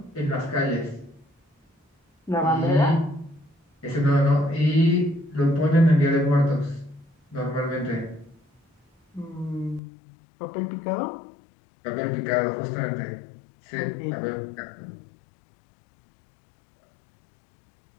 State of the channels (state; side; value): drops out; right; at 9.8 s